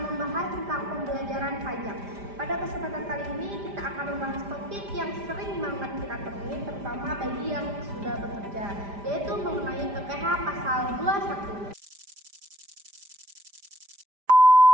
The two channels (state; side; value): late; left; 5.0 ms